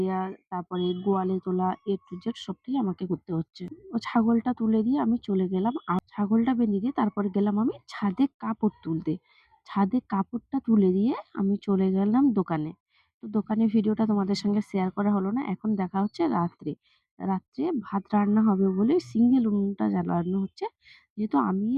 তারপরে গোয়ালে তোলা A to Z সবটাই আমাকে করতে হচ্ছে। ও ছাগলটা তুলে দিয়ে আমি চলে গেলাম। ছাগলটা বেঁধে দিয়ে তারপরে গেলাম আমি ছাদে কাপড় তুলতে। ছাদে কাপড়টা তুলে দিয়ে আমি চলে গেলাম দোকানে। তো দোকানের ভিডিওটা তোমাদের সঙ্গে শেয়ার করা হলো না। এখন দেখা হচ্ছে রাত্রে। রাত্রে ভাত রান্না হবে বলে সিঙ্গেল উনুনটা জ্বালানো হচ্ছে। যেহেতু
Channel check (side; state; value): both; identical; correlation 1.00